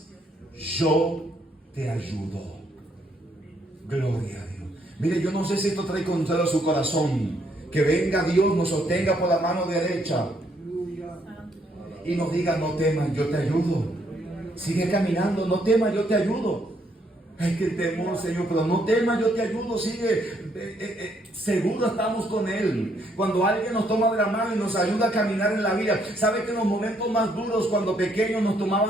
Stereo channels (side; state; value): both; normal; correlation 0.71